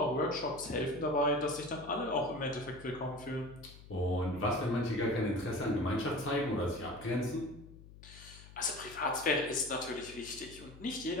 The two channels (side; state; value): left; noise; hum, 18 dB below the sound